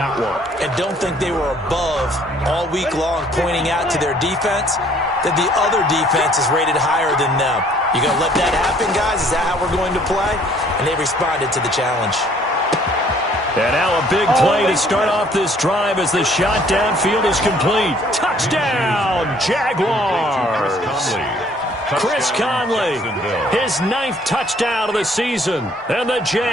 one. And don't think they were above all week long pointing out to their defense that the other defense is rated higher than them. You going to let that happen, guys? Is that how we're going to play? And they responded to the challenge. And now a big play to start off this drive as the shot downfield is complete. Touchdown, Jaguars! Chris Conley, his 9th touchdown of the season. And the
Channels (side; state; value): both; normal; correlation 0.60